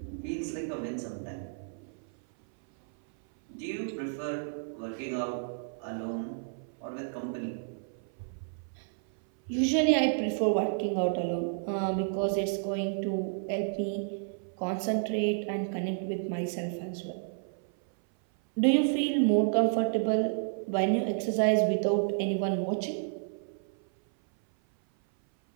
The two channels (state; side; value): silent; left; 56 dB below the other